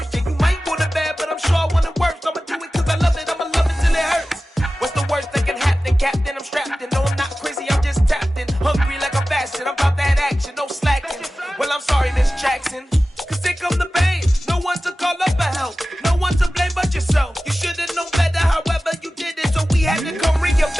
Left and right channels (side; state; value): both; normal; correlation 0.96